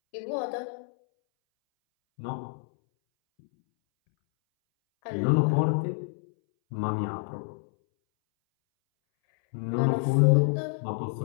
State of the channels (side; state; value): right; silent; 60 dB below the other